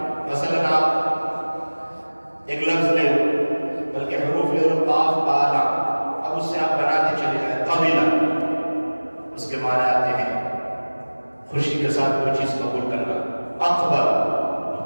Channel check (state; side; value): inverted; both; correlation -1.00